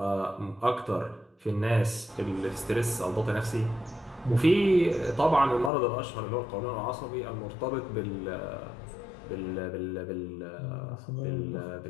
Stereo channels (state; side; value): drops out; right; at 5.7 s